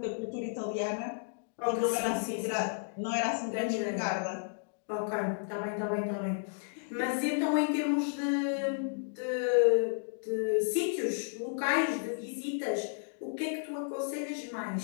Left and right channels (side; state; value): right; silent; digital silence